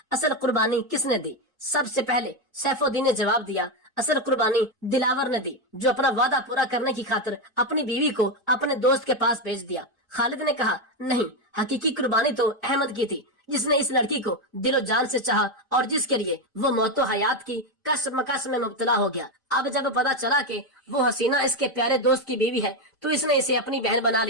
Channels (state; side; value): normal; both; correlation 0.09